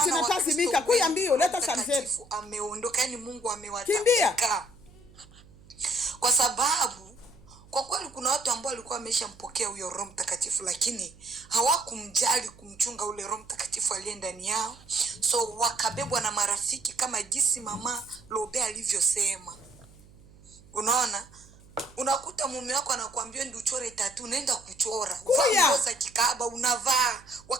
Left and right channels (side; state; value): right; noise; hum, 24 dB below the sound